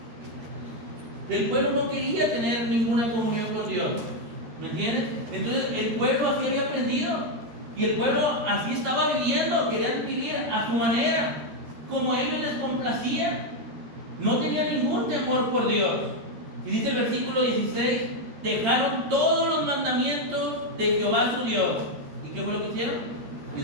El pueblo no quería tener ninguna comunión con Dios. ¿Me entiendes? Entonces el pueblo así había aprendido. Y el pueblo así estaba viviendo. Querían vivir a su manera, como a ellos les complacía. No tenía ningún temor por Dios. Y dice el versículo 16, dejaron todos los mandamientos de Jehová su Dios. ¿Y qué fue lo que hicieron?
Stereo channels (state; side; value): late; left; 13 ms